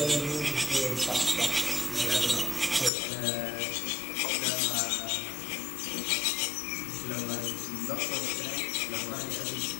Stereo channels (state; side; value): drops out; right; at 2.9 s